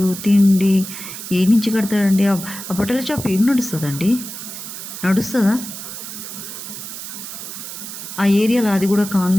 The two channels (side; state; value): right; noise; hiss, 10 dB below the sound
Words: తిండి ఏ నుంచి కడతాడండి? ఆ బట్టల షాప్ ఏం నడుస్తుందండి? నడుస్తుందా? ఆ ఏరియాలో, అది కూడా